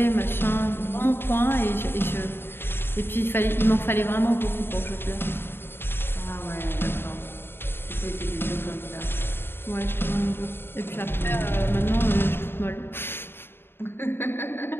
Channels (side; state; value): right; late; 0.11 ms